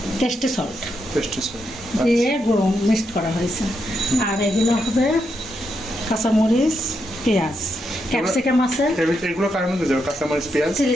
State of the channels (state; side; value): normal; both; correlation 0.82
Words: টেস্টি সল্ট টেস্টি সস দিয়ে মিক্সড করা হয়েছে। আর এগুলো হবে কাঁচামরিচ, পেঁয়াজ, ক্যাপসিকাম আছে। এগুলো কার মধ্যে যাবে? কাঁচামরিচ, পেঁয়াজ,